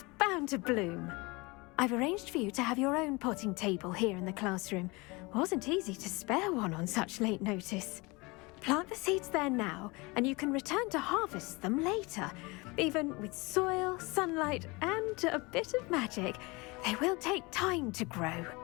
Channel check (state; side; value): quieter; right; 25.5 dB